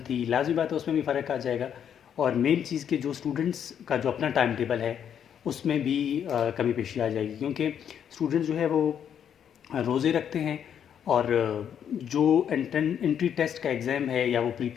लाज़मी बात है उसमें भी फ़र्क आ जाएगा। और मेन चीज़ के जो स्टूडेंट्स का जो अपना टाइम टेबल है उसमें भी कमी पेशी आ जाएगी, क्योंकि स्टूडेंट जो है वो रोज़े रखते हैं और जो एंट्री टेस्ट का एग्ज़ाम है या वो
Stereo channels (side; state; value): right; quieter; 8.7 dB